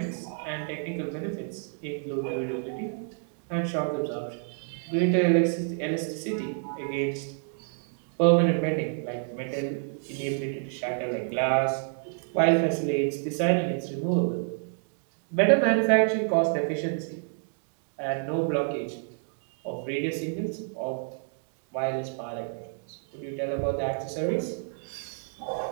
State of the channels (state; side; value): silent; left; 59 dB below the other